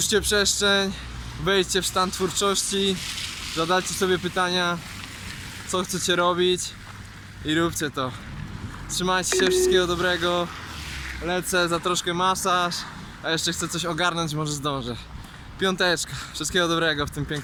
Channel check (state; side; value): identical; both; correlation 1.00